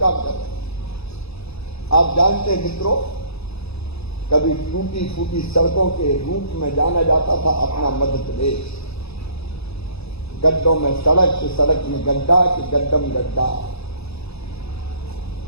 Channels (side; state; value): right; late; 0.79 ms